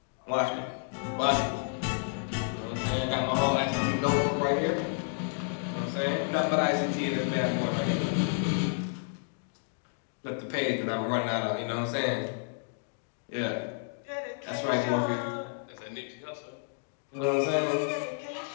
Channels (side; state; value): right; silent; digital silence